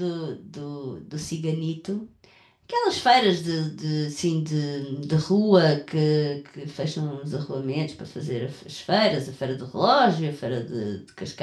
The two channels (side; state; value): both; identical; correlation 1.00